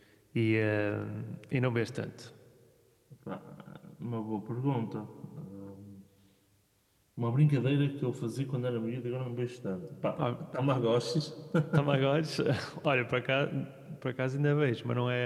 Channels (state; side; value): identical; both; correlation 1.00